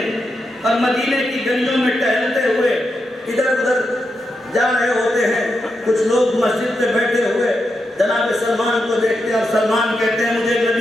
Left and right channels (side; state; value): both; normal; correlation 0.86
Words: اور مدینے کی گلیوں میں ٹہلتے ہوئے ادھر ادھر جا رہے ہوتے ہیں، کچھ لوگ مسجد پہ بیٹھے ہوئے جناب سلمان کو دیکھتے ہیں، اور سلمان کہتے ہیں مجھے